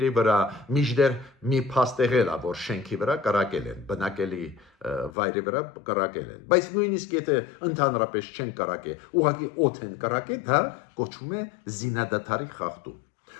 վրա, միջդեռ մի փաստ եղել է, որ շենքի վրա կրակել են, բնակելի վայրի վրա կրակել են։ Բայց նույնիսկ եթե ընդհանրապես չեն կրակել, ուղղակի օդ են կրակել, դա կոչվում է զինադատարի խախտում։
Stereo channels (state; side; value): drops out; right; at 5.1 s